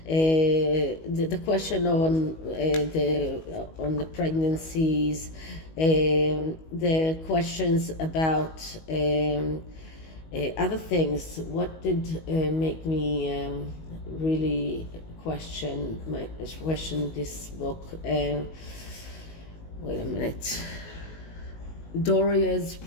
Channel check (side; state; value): right; late; 19 ms